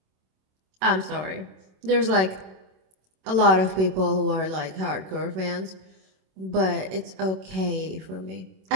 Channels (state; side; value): late; left; 26 ms